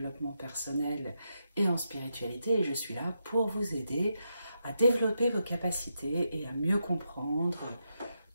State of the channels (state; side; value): inverted; both; correlation -0.84